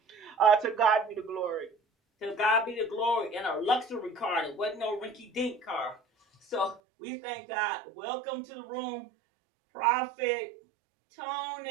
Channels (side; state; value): left; drops out; at 6.8 s